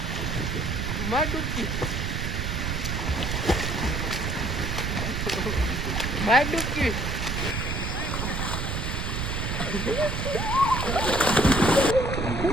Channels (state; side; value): noise; right; rumble, 2 dB below the sound